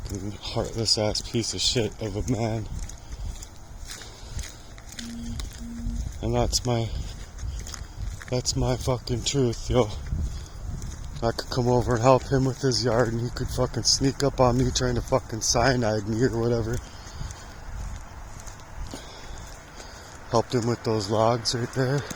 heartless ass piece of shit of a man. And that's my fucking truth, yo. I could come over and help him with his yard and he could fucking sneak up on me trying to fucking cyanide me or whatever. Helped him with those logs right there. You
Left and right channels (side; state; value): both; identical; correlation 1.00